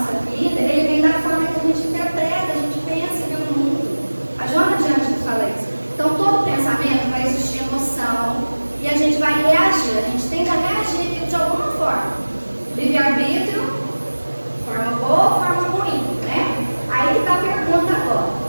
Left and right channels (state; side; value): inverted; both; correlation -1.00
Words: vida, ele vem da forma que a gente interpreta, a gente pensa e vê o mundo. A Joana de antes fala isso. Então, todo pensamento vai existir emoção e a gente vai reagir. A gente tende a reagir de alguma forma. Livre-arbítrio, forma boa, forma ruim, né? Aí que está a pergunta agora.